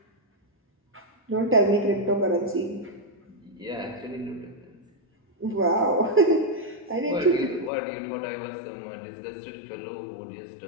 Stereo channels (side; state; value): right; drops out; at 7.7 s